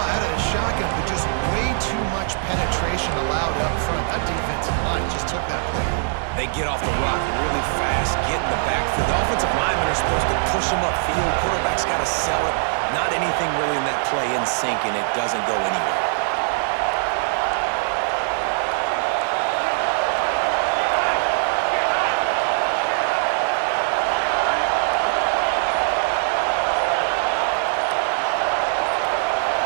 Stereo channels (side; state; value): left; silent; digital silence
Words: of the shotgun, but just way too much penetration allowed up front. That defensive line just took that play. They get off the rock really fast, get in the backfield. The offensive linemen are supposed to push him upfield. Quarterback's got to sell it. Not anything really in that play in sync, and it doesn't go anywhere.